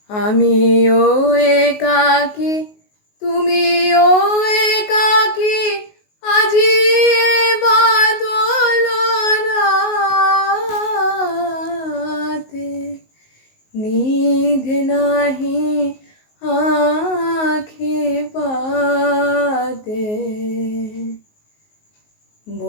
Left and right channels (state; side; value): late; right; 19 ms